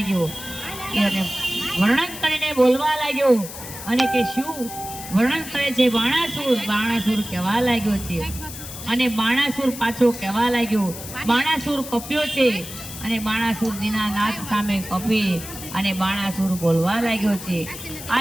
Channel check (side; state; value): left; noise; hiss, 11 dB below the sound